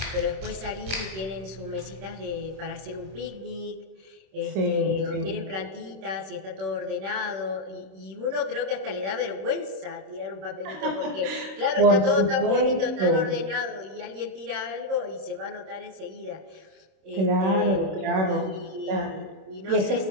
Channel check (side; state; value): left; late; 26 ms